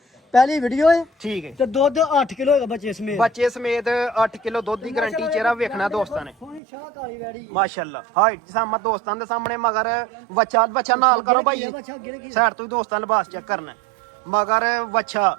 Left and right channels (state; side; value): drops out; left; at 6.6 s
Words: ਪਹਿਲੀ ਵੀਡੀਓ ਹੈ ਠੀਕ ਹੈ ਤੇ ਦੁੱਧ 8 ਕਿਲੋ ਹੈਗਾ ਬੱਚੇ ਸਮੇਤ ਬੱਚੇ ਸਮੇਤ 8 ਕਿਲੋ ਦੁੱਧ ਦੀ ਗਾਰੰਟੀ ਚਿਹਰਾ ਵੇਖਣਾ ਦੋਸਤਾਂ ਨੇ ਸੋਹਣੀ ਸ਼ਾਹ ਕਾਲੀ ਵੈੜੀ ਮਾਸ਼ਾਅੱਲਾ ਹਾਈਟ ਸਾਮਾ ਦੋਸਤਾਂ ਦੇ ਸਾਹਮਣੇ ਮਗਰ ਬੱਚਾ ਨਾਲ ਕਰੋ ਭਾਈ ਬੱਚਾ ਗਿਰ ਗਿਆ ਸਾਈਡ ਤੋਂ ਹੀ ਦੋਸਤਾਂ ਲਿਬਾਸ ਚੈੱਕ ਕਰਨਾ ਮਗਰ ਵੱਛਾ